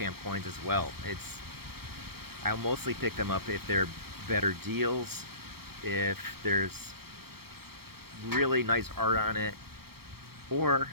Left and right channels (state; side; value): late; left; 0.95 ms